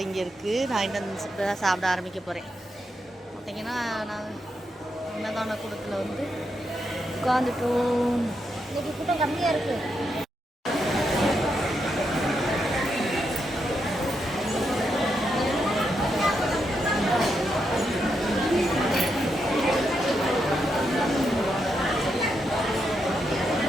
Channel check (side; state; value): both; normal; correlation 0.82